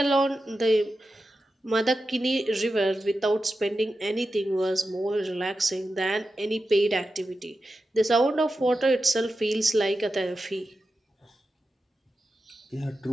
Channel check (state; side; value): normal; both; correlation 0.91